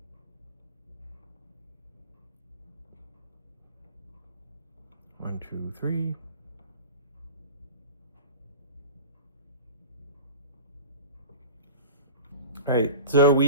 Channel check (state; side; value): inverted; both; correlation -0.33